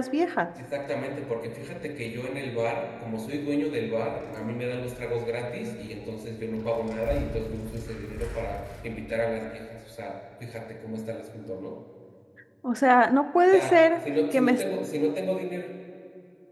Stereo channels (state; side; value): identical; both; correlation 1.00